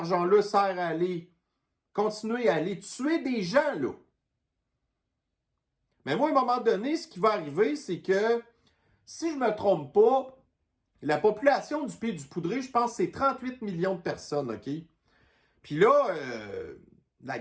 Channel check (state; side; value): identical; both; correlation 1.00